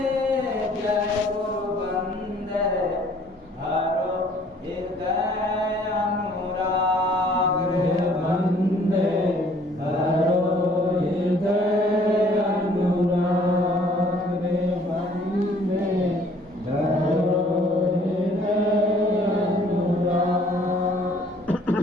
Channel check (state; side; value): normal; both; correlation 0.58